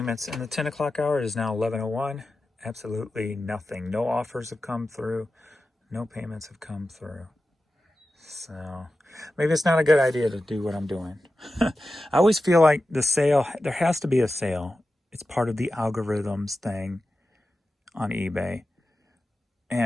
in the 10 o'clock hour is now 11:01. Absolutely nothing. No offers have come through. No payments have come through. So maybe it's not a good idea to do what I'm doing. I always feel like the sale, there has to be a sale. It's part of the algorithms thing on eBay.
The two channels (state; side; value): normal; both; correlation 0.93